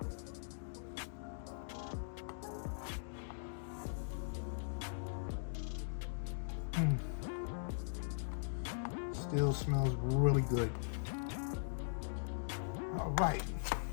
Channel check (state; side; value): silent; right; digital silence